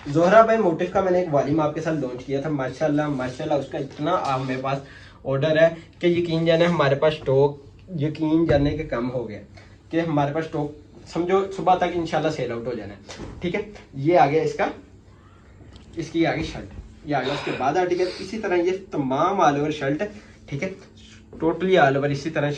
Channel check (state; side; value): identical; both; correlation 1.00